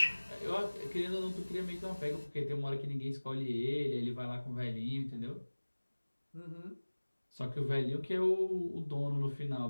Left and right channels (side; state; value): both; inverted; correlation -1.00